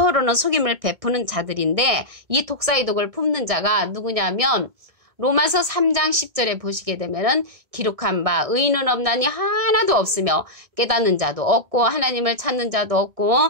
속임을 베푸는 자들인데 이 독사의 독을 품는 자가 누구냐면 로마서 3장 10절에 보시게 되면은 기록한 바 의인은 없나니 하나도 없으며 깨닫는 자도 없고 하나님을 찾는 자도 없고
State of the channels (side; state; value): left; late; 1.6 ms